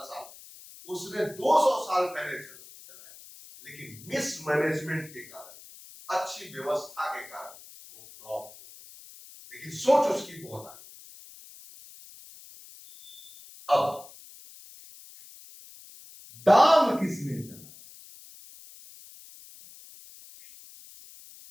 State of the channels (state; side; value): noise; left; hiss, 19 dB below the sound